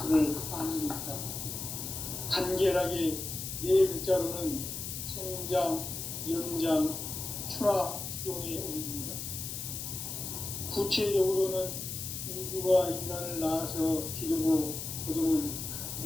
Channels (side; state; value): left; noise; hiss, 6 dB below the sound